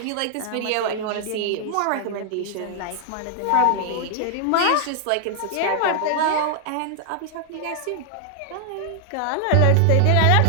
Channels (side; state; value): both; different; correlation 0.00